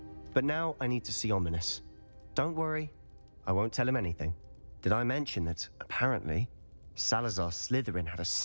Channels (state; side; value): inverted; both; correlation -1.00